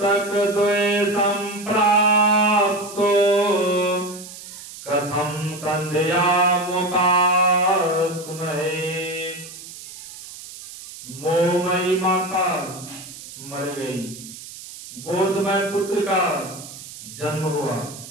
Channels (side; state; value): right; noise; hiss, 14 dB below the sound